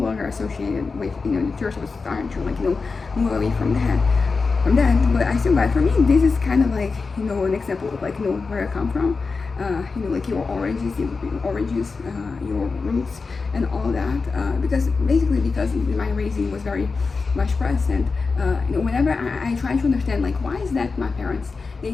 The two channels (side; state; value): right; quieter; 4.4 dB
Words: longer associated with, you know, the church was starting to, like, you know, move away from that. But I still got, for me, this is kind of like, you know, an example of, like, you know, where I come from. You know, like your oranges, your roots, and all that. Because basically, because my raising was very much Protestant, you know, whenever I try to understand, like, why is that my parents, they